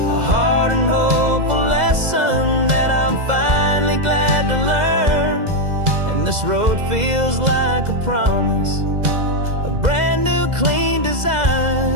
hard and hopeful lesson that I'm finally glad to learn. And this road feels like a promise, a brand new clean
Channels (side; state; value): left; late; 2.0 ms